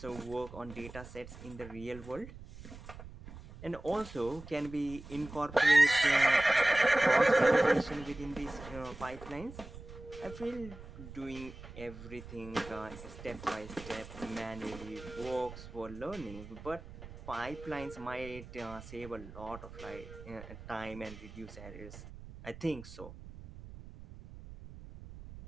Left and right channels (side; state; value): right; noise; rumble, 14 dB below the sound